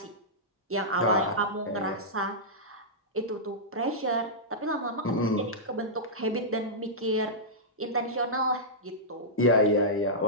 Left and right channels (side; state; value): both; normal; correlation -0.12